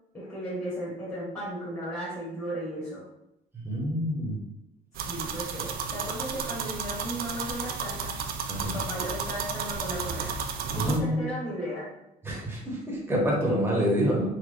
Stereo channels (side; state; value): both; normal; correlation 0.42